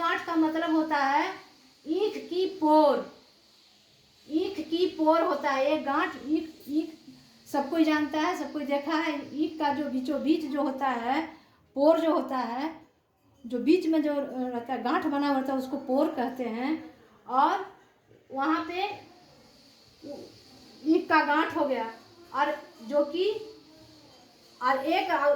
का मतलब होता है ईख की पोर होता है। एक गांठ ईख सब कोई जानता है, सब कोई देखा है। ईख का जो बीचों बीच जो होता है, पोर जो होता है, जो बीच में जो रहता है गांठ बना होता है, उसको पोर कहते हैं। और वहाँ पे ईख का गांठ हो गया, और जो कि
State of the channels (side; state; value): both; identical; correlation 1.00